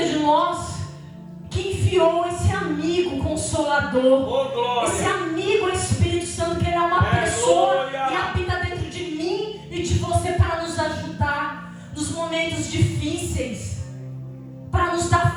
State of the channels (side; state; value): both; identical; correlation 1.00